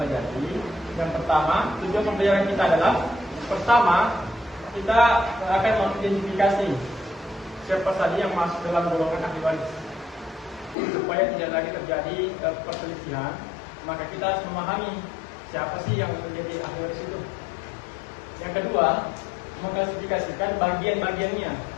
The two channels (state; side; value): drops out; right; at 10.8 s